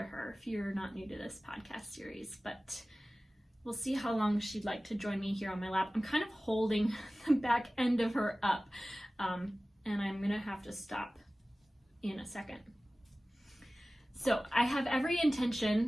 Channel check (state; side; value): normal; both; correlation 0.97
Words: her if you're not new to this podcast series, but we'll see how long she'd like to join me here on my lap. I'm kind of holding the back end of her up. And I'm gonna have to stop in a second. So I have every